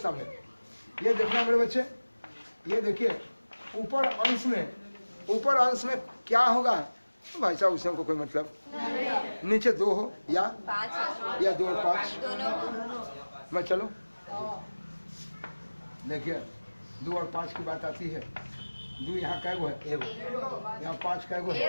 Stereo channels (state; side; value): inverted; both; correlation -1.00